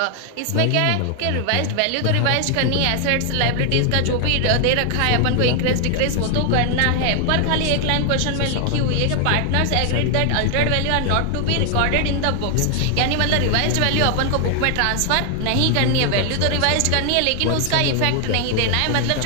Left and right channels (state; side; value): different; both; correlation 0.00